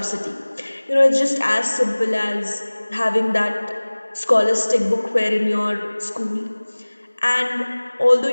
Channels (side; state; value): both; inverted; correlation -1.00